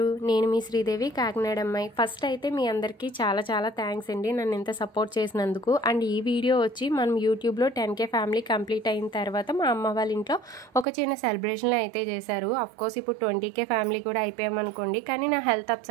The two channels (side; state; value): left; drops out; at 10.9 s